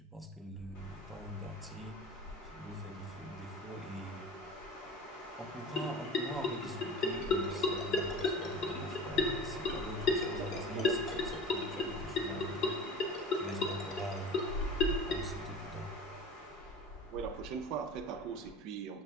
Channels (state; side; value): normal; both; correlation 0.37